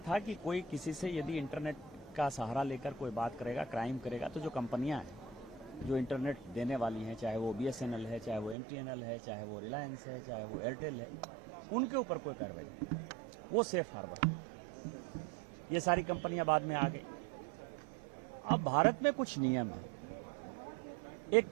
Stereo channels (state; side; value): drops out; left; at 8.6 s